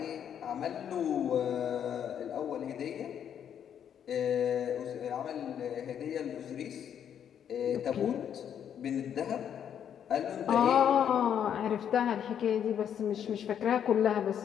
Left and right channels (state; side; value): quieter; right; 8.9 dB